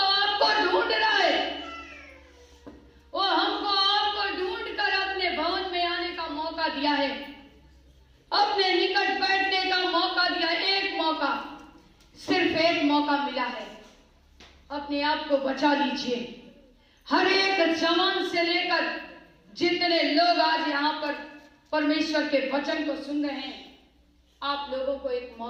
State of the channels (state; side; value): identical; both; correlation 1.00